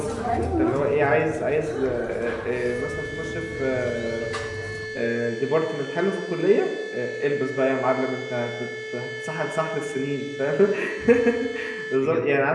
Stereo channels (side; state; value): both; identical; correlation 1.00